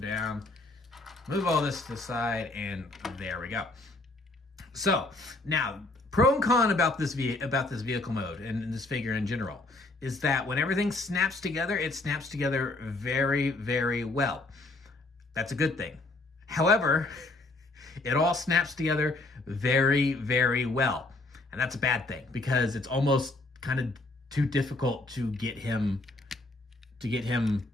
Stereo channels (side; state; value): right; quieter; 3.0 dB